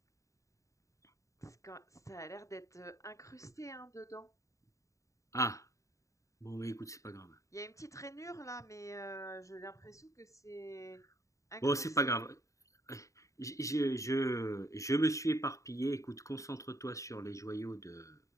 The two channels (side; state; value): right; late; 0.15 ms